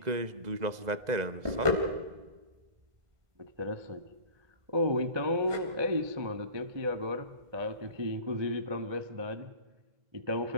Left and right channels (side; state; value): left; late; 2.0 ms